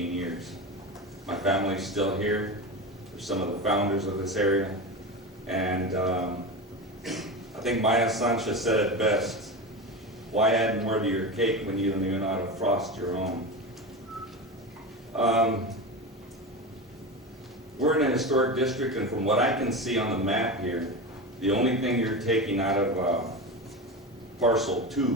years. My family's still here. They're some of the founders of this area. And I think Maya Sanchez said it best. Why add more to your cake when you don't even know how to frost your own? We're in a historic district, and from what I can see on the map here, the only thing you're taking out of parcel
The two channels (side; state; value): both; normal; correlation 0.23